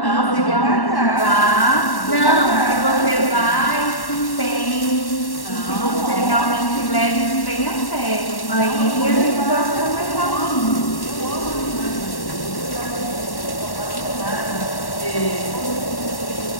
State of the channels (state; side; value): late; right; 1.1 ms